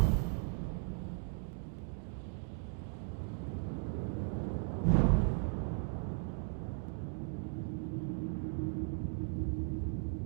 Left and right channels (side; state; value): left; silent; 53 dB below the other